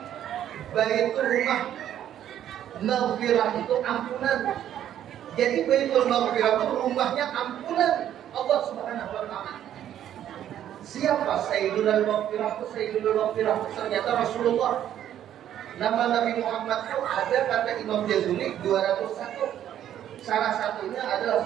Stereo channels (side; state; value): left; quieter; 10.9 dB